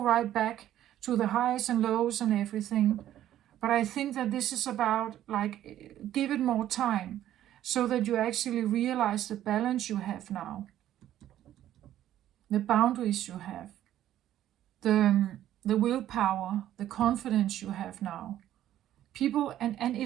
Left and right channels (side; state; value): left; quieter; 12.3 dB